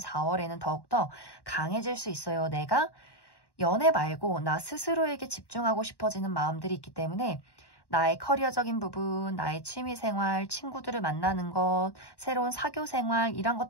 더욱더 강해질 수 있어요. 내가 연애 말고 나 스스로에게 집중하고 싶어지는 마음들이 있기 때문에 나의 커리어적인 부분, 나의 취미생활, 친구들을 만나는 것, 새로운 사교생활 이런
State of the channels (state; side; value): late; right; 1.1 ms